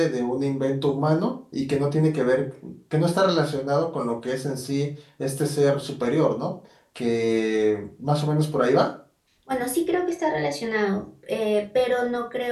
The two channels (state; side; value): identical; both; correlation 1.00